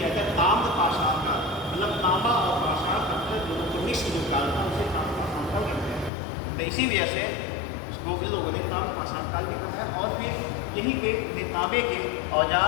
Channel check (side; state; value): right; drops out; at 6.1 s